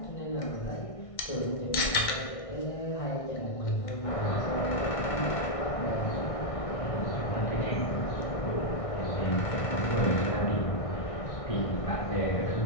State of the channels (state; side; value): late; right; 1.6 ms